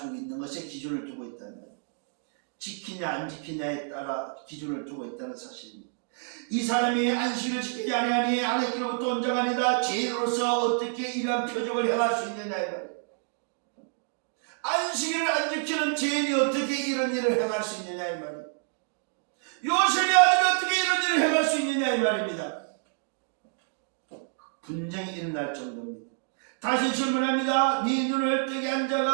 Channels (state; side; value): silent; left; 59 dB below the other